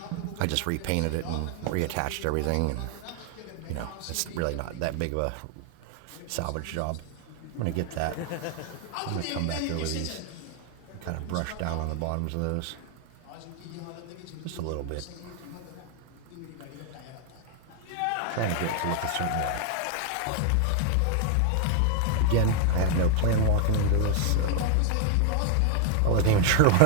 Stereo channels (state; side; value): different; both; correlation 0.00